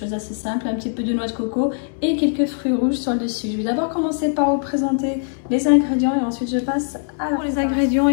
d'assez simple, un petit peu de noix de coco et quelques fruits rouges sur le dessus. Je vais d'abord commencer par vous présenter les ingrédients et ensuite je passe à pour les ingrédients.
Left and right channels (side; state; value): right; silent; 65 dB below the other